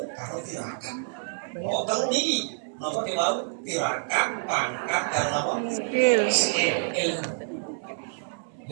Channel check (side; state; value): left; silent; digital silence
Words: karo tirakat. Oh telu niki nomor tirakat, pangkat dan apa? Skill ilmu.